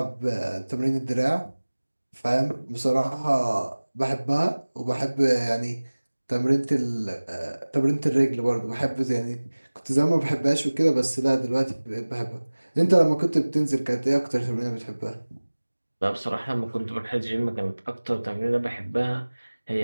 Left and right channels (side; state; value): both; inverted; correlation -1.00